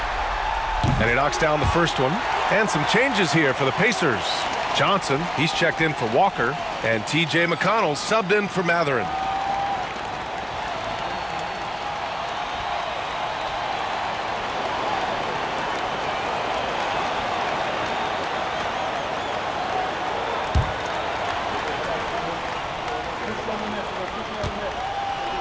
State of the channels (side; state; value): both; identical; correlation 1.00